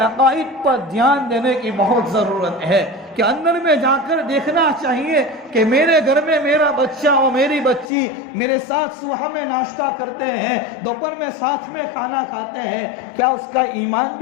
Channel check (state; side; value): drops out; right; at 7.9 s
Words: عقائد پر دھیان دینے کی بہت ضرورت ہے کہ اندر میں جا کر دیکھنا چاہیے کہ میرے گھر میں میرا بچہ اور میری بچی میرے ساتھ صبح میں ناشتہ کرتے ہیں، دوپہر میں ساتھ میں کھانا کھاتے ہیں، کیا اس کا ایمان